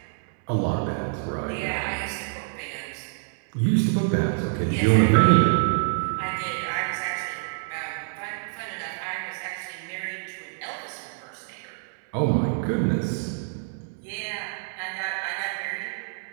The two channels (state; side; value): silent; left; digital silence